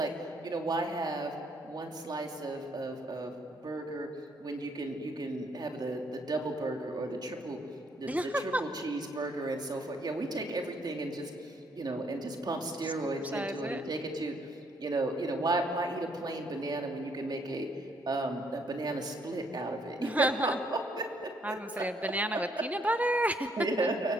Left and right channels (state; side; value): normal; both; correlation 0.69